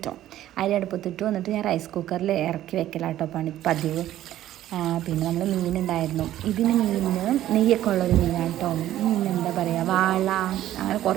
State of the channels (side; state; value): left; quieter; 13.1 dB